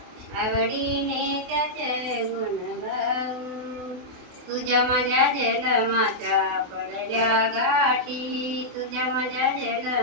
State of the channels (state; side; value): late; left; 28 ms